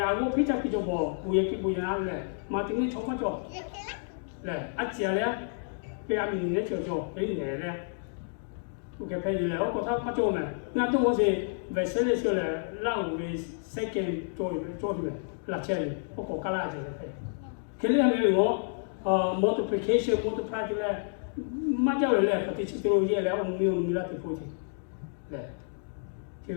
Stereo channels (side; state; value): right; silent; digital silence